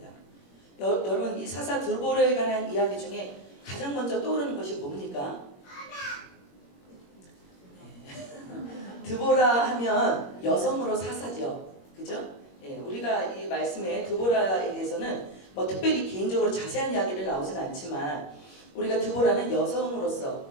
여러분, 이 사사 드보라에 관한 이야기 중에 가장 먼저 떠오르는 것이 뭡니까? 드보라 하면 여성으로 사사죠, 그죠? 예, 우리가 이 말씀에 드보라에 대해서는 뭐 특별히 개인적으로 자세한 이야기를 나오진 않지만 우리가 드보라는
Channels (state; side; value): late; right; 21 ms